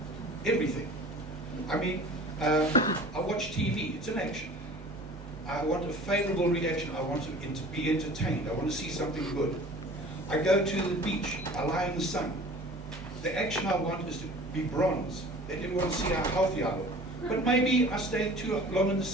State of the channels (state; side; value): normal; both; correlation 0.44